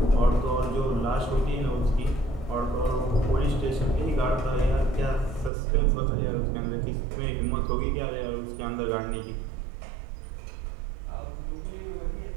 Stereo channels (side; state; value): left; drops out; at 5.5 s